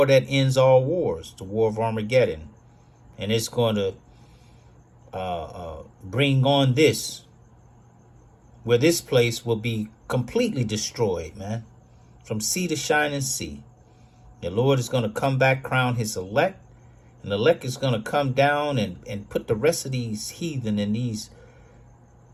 that ends all wars. The war of Armageddon. And it's going to bring on this, where this place will be completely destroyed, man, from sea to shining sea. The Lord is going to come back, crown his elect, and the elect is going to come down and put the rest of these heathen and these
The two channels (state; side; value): identical; both; correlation 1.00